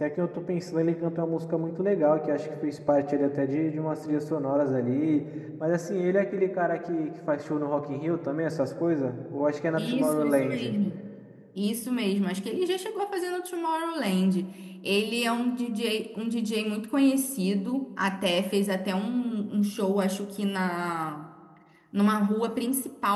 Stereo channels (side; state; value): both; identical; correlation 1.00